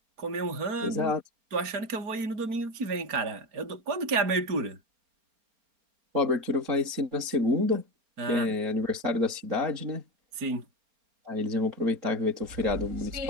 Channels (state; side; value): late; left; 4.3 ms